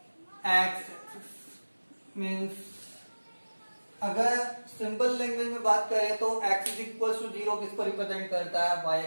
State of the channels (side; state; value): both; inverted; correlation -1.00